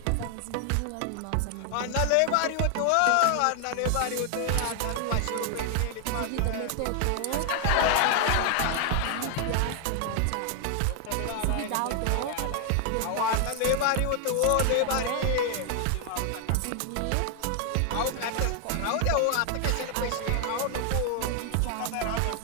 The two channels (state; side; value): different; both; correlation 0.00